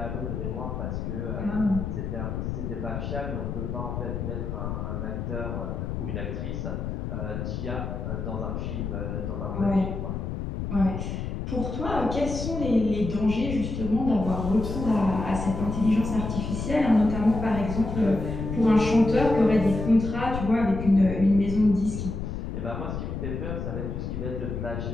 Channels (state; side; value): noise; left; rumble, 4 dB below the sound